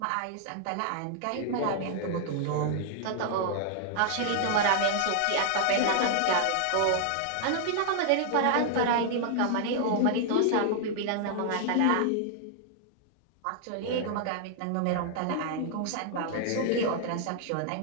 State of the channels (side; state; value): both; different; correlation 0.00